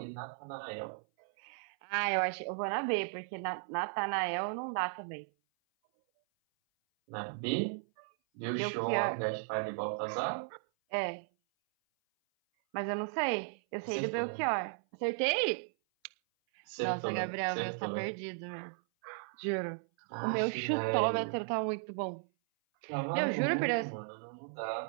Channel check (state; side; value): silent; left; 54 dB below the other